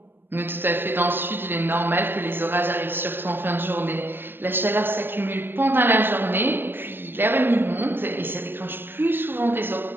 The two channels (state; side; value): late; left; 0.098 ms